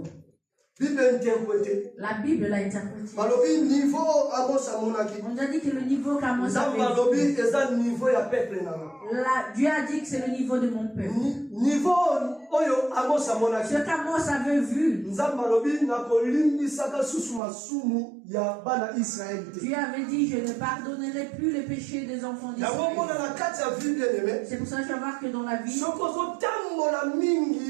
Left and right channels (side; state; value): left; drops out; at 17.4 s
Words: La Bible l'a interprété. On a dit que le niveau qu'Amos avait vu, Dieu a dit que c'est le niveau de mon peuple. Ce qu'Amos avait vu, Dieu avait dit, je ne pardonnerai plus les péchés des enfants d'Israël. C'est pour ça que je vais voir que dans la vie, si